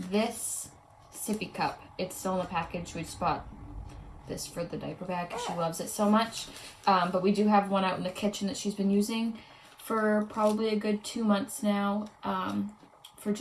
this sippy cup, it's still in the package. We just bought this for the diaper bag because she loves it so much. But we do have one out in the kitchen that she's been using for probably a good 2 months now, for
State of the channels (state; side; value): identical; both; correlation 1.00